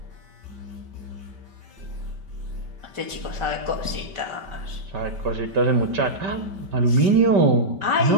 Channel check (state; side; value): late; left; 5.1 ms